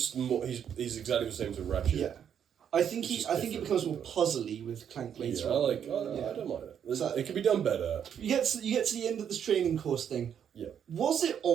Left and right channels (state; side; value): quieter; left; 8.5 dB